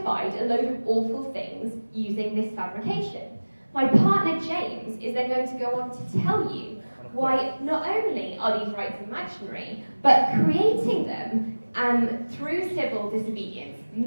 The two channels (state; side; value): inverted; both; correlation -1.00